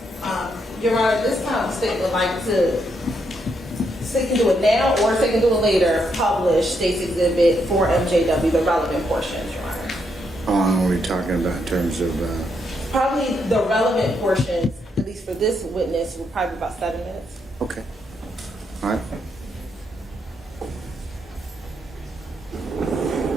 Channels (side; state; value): both; normal; correlation 0.78